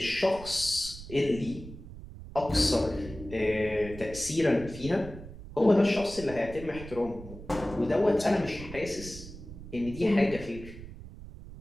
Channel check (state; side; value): noise; right; rumble, 14 dB below the sound